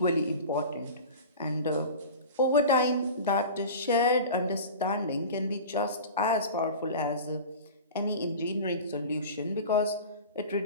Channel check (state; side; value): inverted; both; correlation -0.35